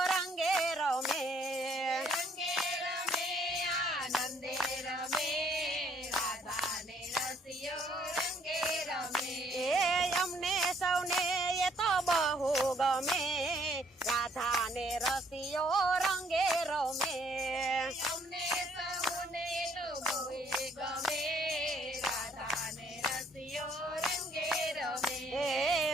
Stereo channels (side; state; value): both; normal; correlation 0.65